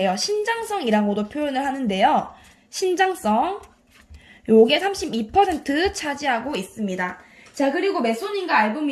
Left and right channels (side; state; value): both; identical; correlation 1.00